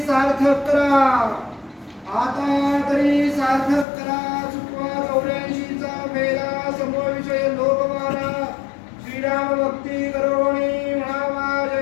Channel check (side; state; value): right; drops out; at 3.9 s